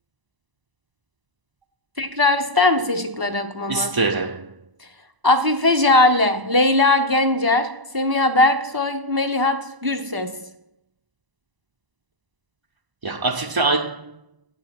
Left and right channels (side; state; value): left; late; 1.0 ms